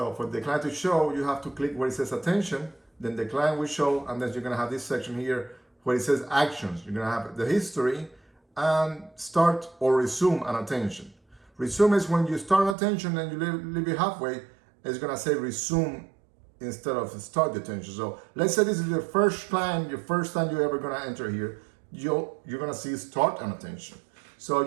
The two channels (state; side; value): drops out; left; at 12.8 s